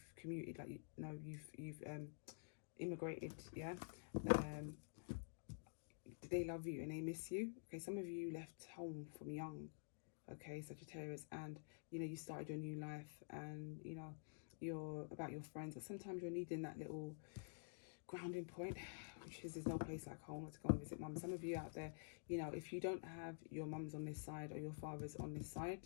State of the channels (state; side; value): silent; right; digital silence